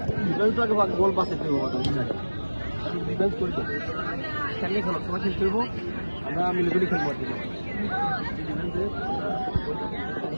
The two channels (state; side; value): inverted; both; correlation -1.00